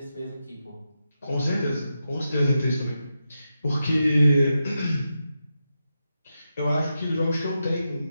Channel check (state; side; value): inverted; both; correlation -0.88